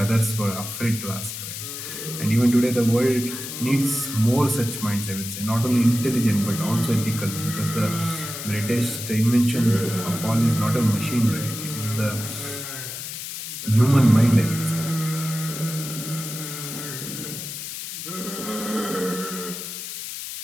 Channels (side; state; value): left; noise; hiss, 8 dB below the sound